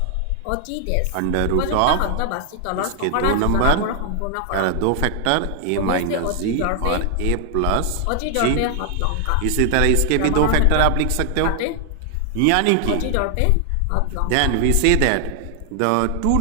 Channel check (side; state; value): both; different; correlation 0.00